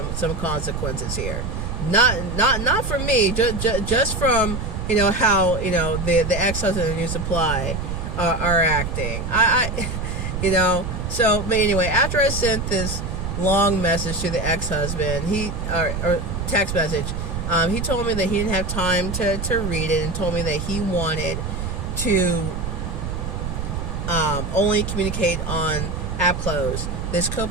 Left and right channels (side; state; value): right; noise; rumble, 4 dB below the sound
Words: consequences here. Not from me, just from, you know, how, you know, the ex-husband and new supply are acting. I you know. So, but anyway, after I sent this long message to the ex-husband, or text message, he told me that he didn't have time to read it, and told me that he wanted to only communicate on AppClose, this